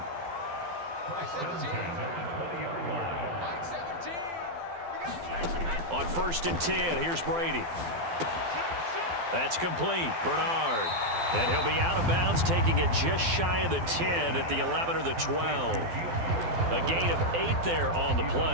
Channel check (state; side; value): late; left; 12 ms